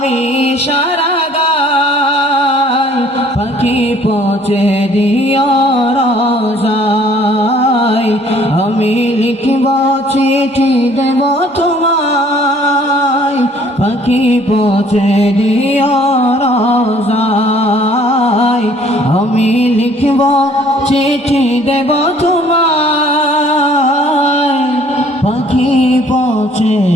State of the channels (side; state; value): both; normal; correlation 0.58